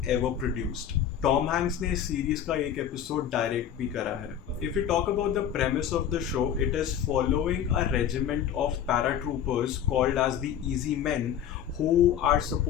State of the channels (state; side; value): quieter; right; 9.5 dB